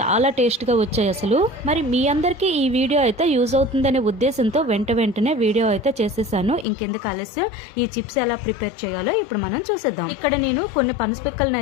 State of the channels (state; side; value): drops out; right; at 6.7 s